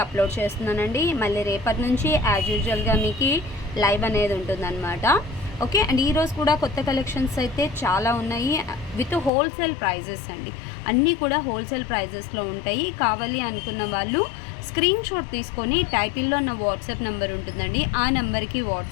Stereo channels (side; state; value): right; drops out; at 9.3 s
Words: అప్లోడ్ చేస్తున్నానండి. మళ్ళీ రేపటి నుంచి యాజ్ యూజువల్గా మీకు లైవ్ అనేది ఉంటుందన్నమాట. ఓకే అండ్ ఈరోజు కూడా కొత్త కలెక్షన్స్ అయితే చాలా ఉన్నాయి విత్ హోల్సేల్ ప్రైజెస్ అండి. అన్నీ కూడా హోల్సేల్ ప్రైజెస్లో ఉంటాయి. కావాలి అనుకున్న వాళ్ళు స్క్రీన్ షాట్ తీసుకొని టైటిల్లో నా వాట్సాప్ నెంబర్ ఉంటుందండి, ఆ నెంబర్కి